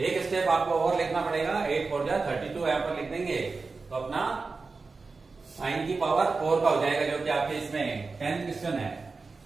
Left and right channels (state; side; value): quieter; left; 4.2 dB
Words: स्टेप आपको और लिखना पड़ेगा, 8 4 जा 32 यहां पर लिख देंगे तो अपना साइन की पावर 4 का हो जाएगा, जो कि आपके इसमें 10th क्वेश्चन है।